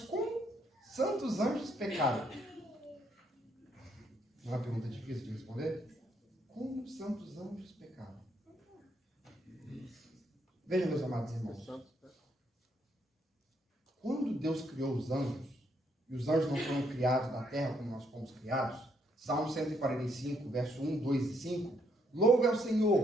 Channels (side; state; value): both; normal; correlation 0.73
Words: como santos anjos pecaram? Não é uma pergunta difícil de responder? Como santos anjos pecaram? Veja, meus amados irmãos. Quando Deus criou os anjos, e os anjos não foram criados da terra como nós fomos criados, Salmo 145, verso 1, 2 e 5, louve ao